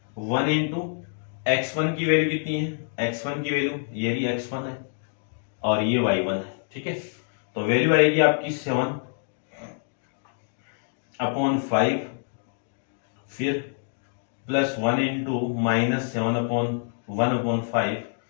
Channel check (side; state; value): right; silent; digital silence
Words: इंटू x1 की वैल्यू कितनी है, x1 की वैल्यू ये भी x1 है और ये y1 है, ठीक है। तो वैल्यू आएगी आपकी 7 अपॉन 5, फिर plus 1 into minus 7 upon 1 upon 5